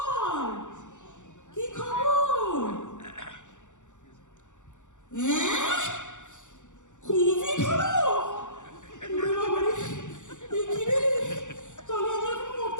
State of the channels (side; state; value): right; late; 0.85 ms